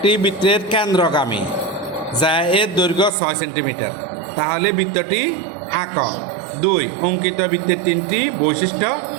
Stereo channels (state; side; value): drops out; left; at 3.1 s